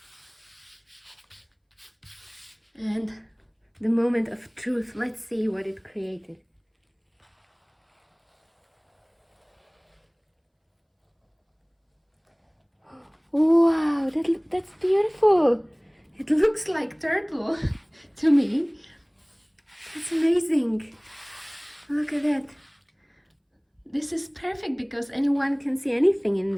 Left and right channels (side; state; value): both; identical; correlation 1.00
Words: And the moment of truth, let's see what it created. Wow, that's beautiful. It looks like turtle to me. That's amazing. Look at that. This is perfect because anyone can see anything in